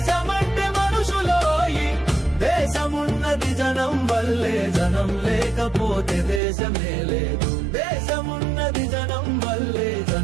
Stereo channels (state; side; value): drops out; left; at 6.4 s